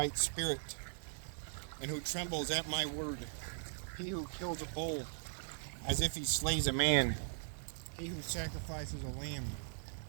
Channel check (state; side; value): silent; left; digital silence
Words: spirit, and who trembles at my word. He who kills a bull as if he slays a man, he who sacrifices a lamb